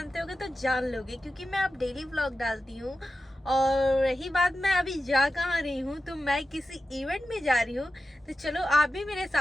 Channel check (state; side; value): normal; both; correlation 0.93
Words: होगे तो जान लोगे, क्योंकि मैं अब डेली व्लॉग डालती हूँ। और रही बात मैं अभी जा कहाँ रही हूँ, तो मैं किसी इवेंट में जा रही हूँ। तो चलो आप भी मेरे